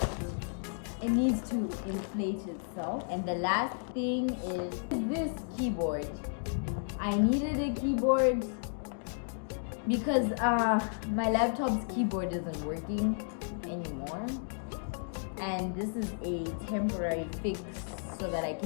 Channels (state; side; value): silent; right; digital silence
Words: It needs to inflate itself. And the last thing is this keyboard. I needed a keyboard because my laptop's keyboard isn't working anymore. And this is a temporary fix so that I